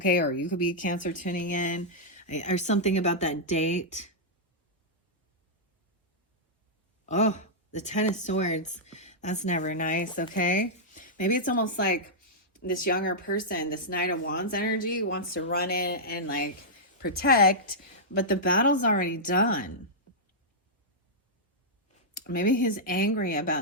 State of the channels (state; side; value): normal; both; correlation -0.10